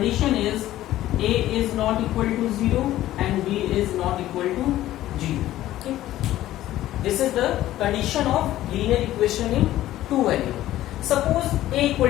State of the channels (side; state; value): right; quieter; 14.3 dB